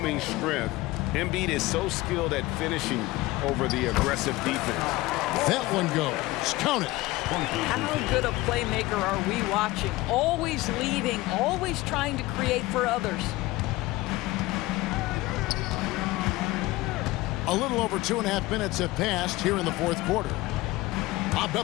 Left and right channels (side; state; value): right; quieter; 19.4 dB